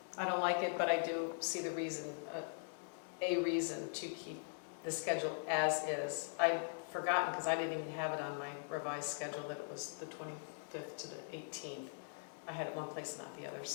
I don't like it, but I do see the reason, a reason to keep the schedule as is. I'd forgotten because I didn't even have it on my revised schedule that it was the 25th to the 18th. I had it one place and not the other,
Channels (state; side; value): silent; right; digital silence